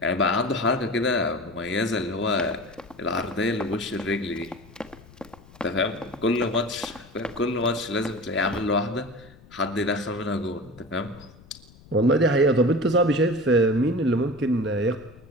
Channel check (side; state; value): left; noise; rumble, 23 dB below the sound